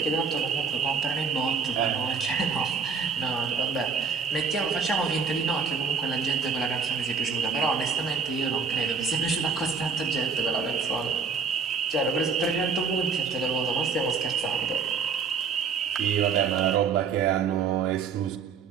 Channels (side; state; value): left; quieter; 5.6 dB